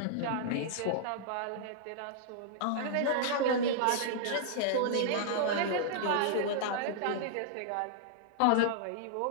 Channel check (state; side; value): different; both; correlation -0.01